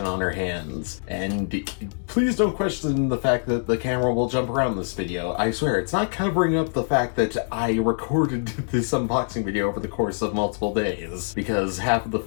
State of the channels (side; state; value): right; silent; digital silence